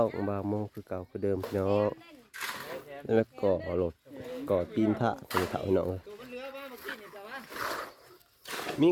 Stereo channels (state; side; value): identical; both; correlation 1.00